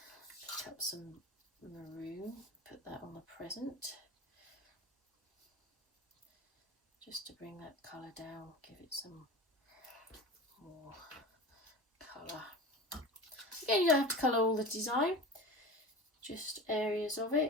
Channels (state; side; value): normal; both; correlation 0.32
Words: Pick up some maroon, put that on the present. Just to bring that colour down, give it some more colour. Again, you don't have to colour all the design, just areas of